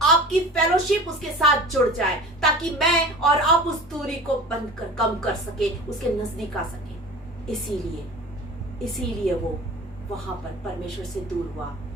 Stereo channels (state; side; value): normal; both; correlation 0.39